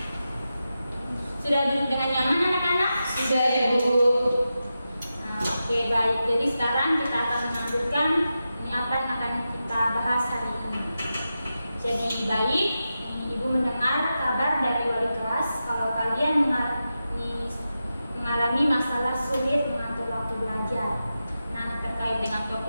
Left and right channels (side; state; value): both; inverted; correlation -0.91